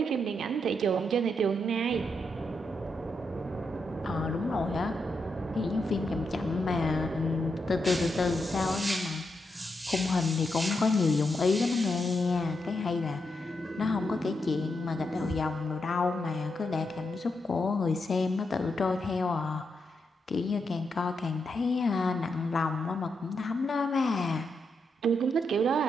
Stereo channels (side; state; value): both; normal; correlation 0.83